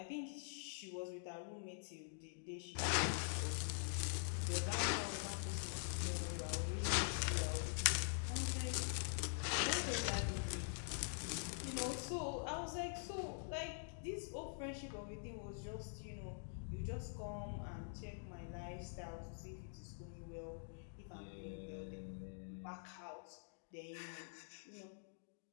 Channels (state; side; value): silent; right; digital silence